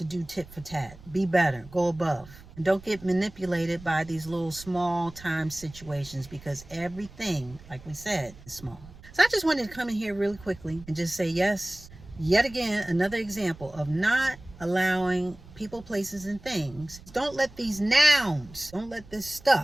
do tit for tat. Be better. Go above. And don't get manipulated by these little small time situations, because everything, like we said, is small. So I just wanted to come in here really quickly and just say, yes, yet again, another example of not allowing people, places, and things. Don't let these nouns, don't let this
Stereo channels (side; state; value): right; noise; rumble, 20 dB below the sound